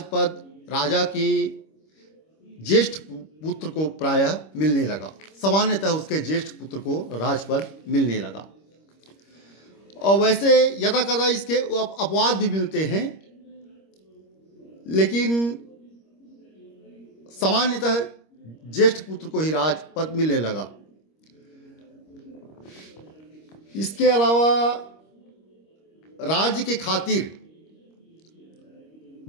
राजा के ज्येष्ठ पुत्र को प्रायः मिलने लगा। सामान्यतः उसके ज्येष्ठ पुत्र को राजपद मिलने लगा। और वैसे यदा कदा इसके अपवाद भी मिलते हैं, लेकिन सामान्यतः ज्येष्ठ पुत्र को ही राजपद मिलने लगा। इसके अलावा राज्य के खातिर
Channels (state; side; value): late; right; 26 ms